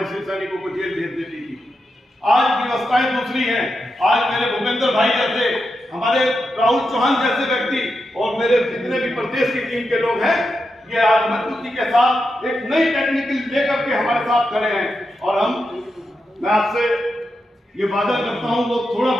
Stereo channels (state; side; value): normal; both; correlation 0.87